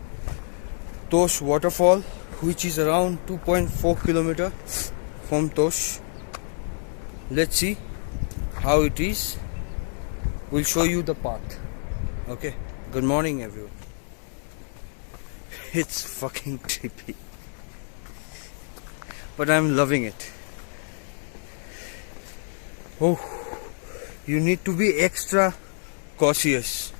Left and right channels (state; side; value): silent; right; 60 dB below the other